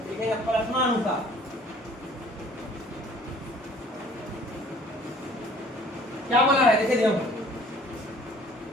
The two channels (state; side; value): normal; both; correlation 0.54